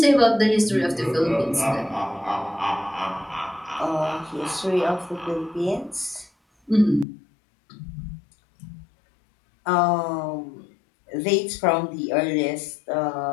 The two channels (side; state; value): right; drops out; at 7.1 s